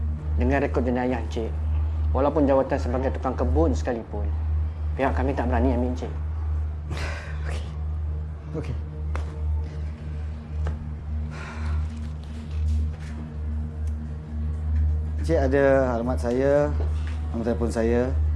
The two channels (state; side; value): identical; both; correlation 1.00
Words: Dengan rekod jenayah Encik, walaupun jawatan sebagai tukang kebun sekalipun, pihak kami tak berani ambil Encik. Okey. Cik ada alamat saya, nombor telefon saya.